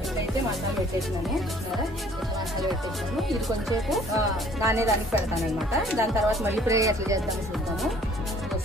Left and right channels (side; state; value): both; normal; correlation 0.56